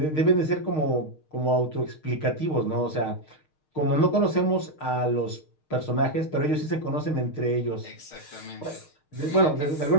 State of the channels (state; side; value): late; right; 6.5 ms